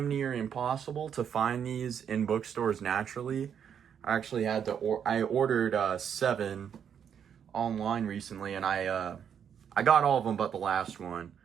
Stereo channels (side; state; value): left; quieter; 8.2 dB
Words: near impossible to find these in bookstores naturally. I actually had to, I ordered 7 online recently, and I got all of them but the last one.